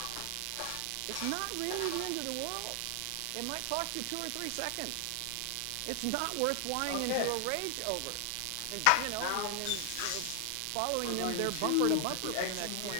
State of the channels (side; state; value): both; different; correlation 0.00